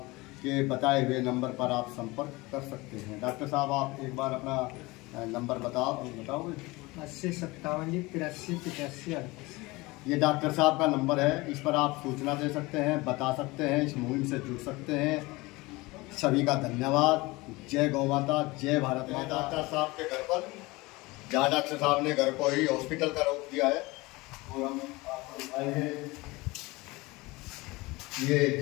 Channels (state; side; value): quieter; right; 22.5 dB